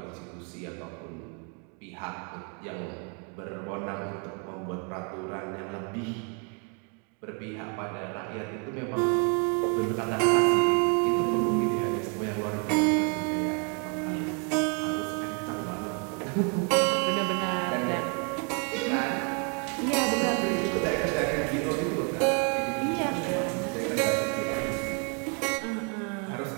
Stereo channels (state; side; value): quieter; left; 37.2 dB